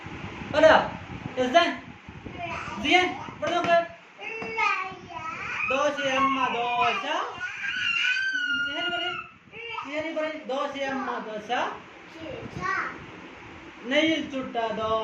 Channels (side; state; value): both; identical; correlation 1.00